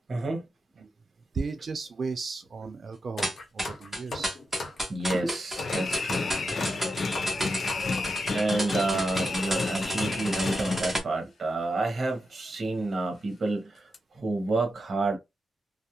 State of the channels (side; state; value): both; normal; correlation 0.87